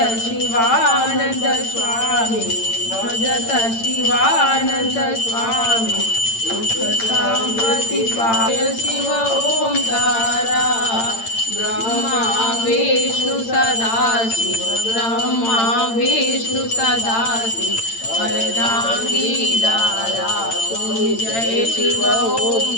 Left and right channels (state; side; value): late; right; 8.8 ms